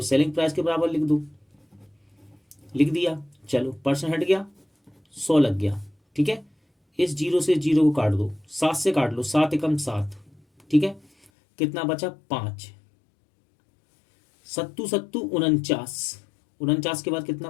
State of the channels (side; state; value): right; drops out; at 11.3 s